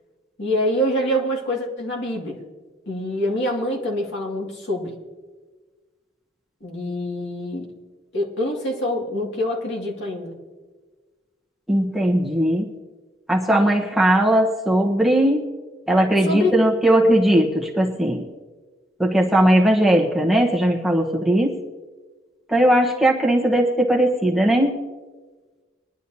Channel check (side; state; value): both; normal; correlation 0.77